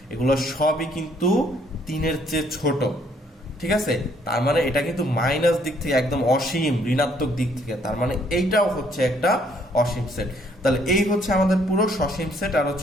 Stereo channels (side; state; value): both; normal; correlation 0.65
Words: এগুলো সবই কিন্তু 3 এর চেয়ে ছোট। ঠিক আছে, তার মানে এটা কিন্তু মাইনাস দিক থেকে একদম অসীম, ঋণাত্মক দিক থেকে, তার মানে এইটাও হচ্ছে একটা অসীম সেট। তাহলে এই হচ্ছে আমাদের পুরো সসীম সেট আর